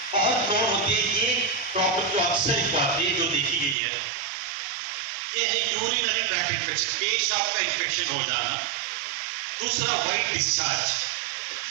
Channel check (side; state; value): left; drops out; at 3.8 s